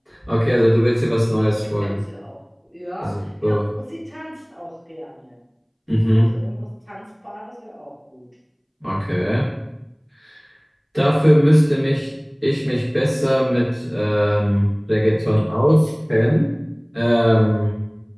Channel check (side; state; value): both; identical; correlation 1.00